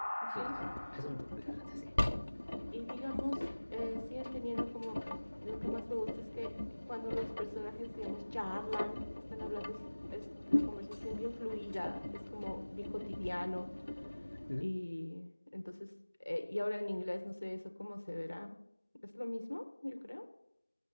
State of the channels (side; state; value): both; inverted; correlation -1.00